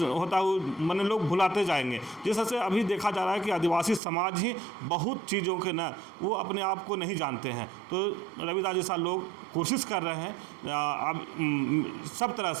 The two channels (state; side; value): drops out; left; at 4.0 s